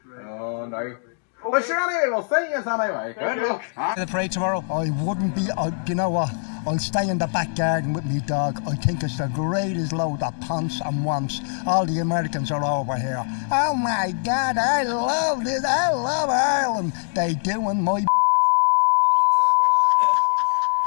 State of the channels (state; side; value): silent; right; digital silence